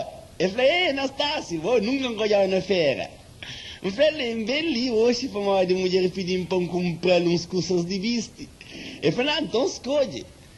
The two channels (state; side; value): identical; both; correlation 1.00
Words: Eu falei, Anastácio, vou nunca encolhar na feira. Eu falei, bem ali hoje para uma mulher pedindo para comprar uns cursos de viste. Eu falei, então escolhe.